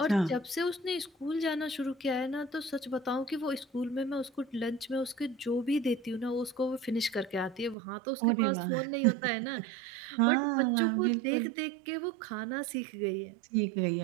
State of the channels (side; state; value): left; drops out; at 7.8 s